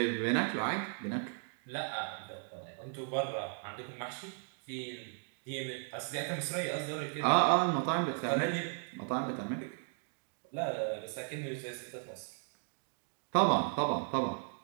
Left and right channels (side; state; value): left; silent; 54 dB below the other